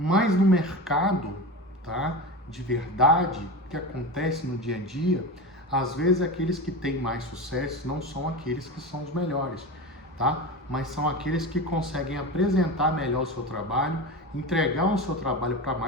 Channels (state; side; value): normal; both; correlation 0.25